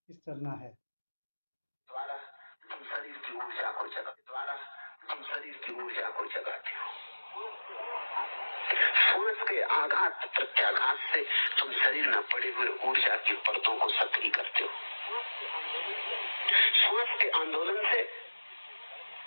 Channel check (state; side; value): inverted; both; correlation -1.00